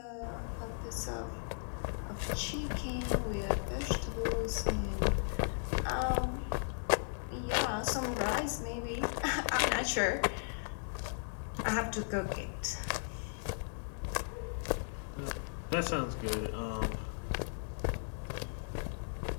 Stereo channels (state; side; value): silent; right; 54 dB below the other